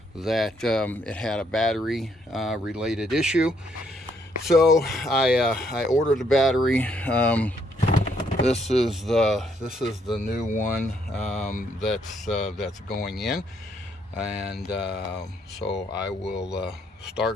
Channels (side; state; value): both; normal; correlation 0.71